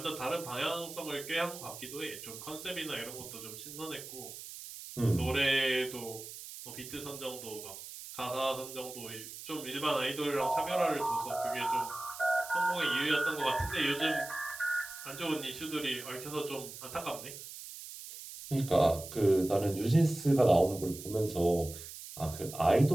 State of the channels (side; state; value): right; noise; hiss, 12 dB below the sound